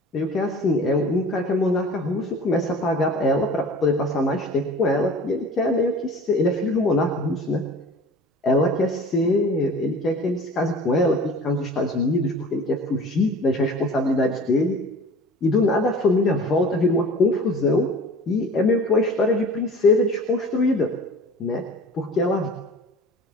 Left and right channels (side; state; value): both; normal; correlation 0.42